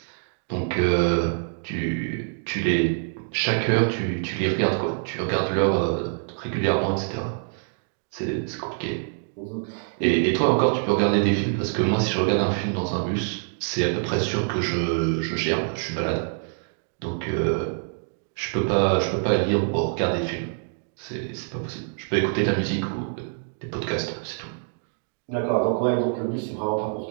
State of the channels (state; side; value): silent; left; digital silence